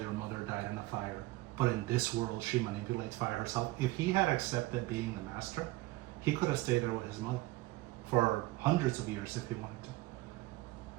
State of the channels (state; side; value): quieter; left; 19.3 dB